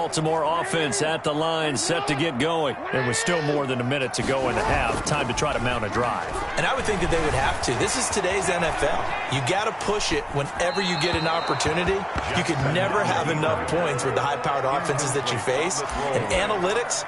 offense at the line, set to get going. There was still more than a minute to go in the half. Time to try to mount a drive. And I would think that they would have to. This is today's NFL. You got to push it whenever you get an opportunity. You could never have enough points with the high-powered offenses that you face. And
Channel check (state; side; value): identical; both; correlation 1.00